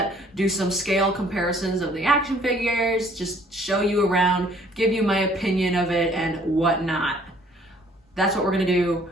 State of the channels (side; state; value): both; normal; correlation 0.59